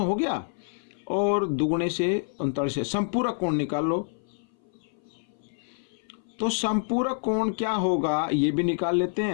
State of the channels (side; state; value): right; silent; 58 dB below the other